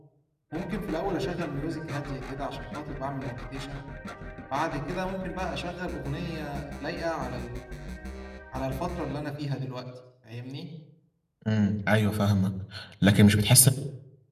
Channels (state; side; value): identical; both; correlation 1.00